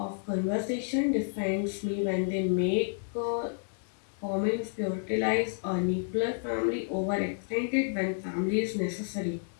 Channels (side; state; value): right; silent; digital silence